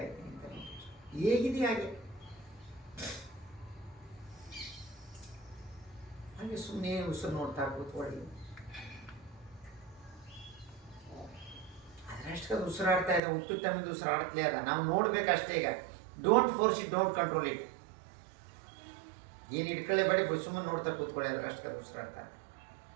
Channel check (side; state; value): left; drops out; at 13.2 s